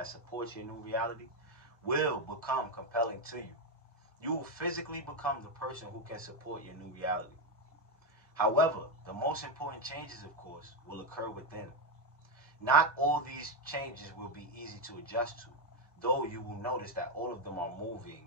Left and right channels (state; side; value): normal; both; correlation 0.07